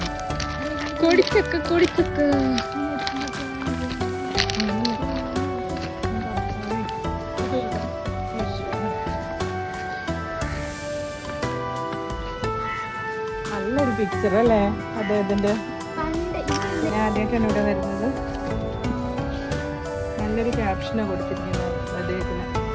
കോടിച്ചക്ക കോടിച്ചക്ക. നല്ലൊരു പിക്ചർ അല്ലേ അദ്ദേഹത്തിന്റെ? ഞാൻ ആദ്യമായിട്ടാണ് ഇവിടെ വരുന്നത്. നല്ലൊരു ക്യാപ്ഷനാണ് കൊടുത്തിരിക്കുന്നത് അദ്ദേഹത്തിന്.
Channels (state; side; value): identical; both; correlation 1.00